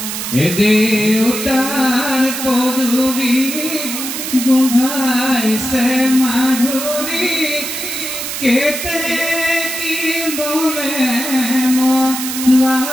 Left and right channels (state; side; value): noise; right; hiss, 5 dB below the sound